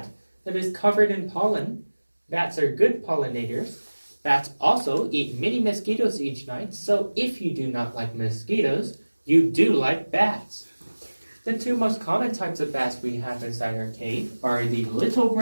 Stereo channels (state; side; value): inverted; both; correlation -1.00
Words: that is covered in pollen. Bats are good pollinators. Bats also eat many mosquitoes each night, so if you do not like mosquitoes, you do like bats. The two most common types of bats we have inside our cave are the little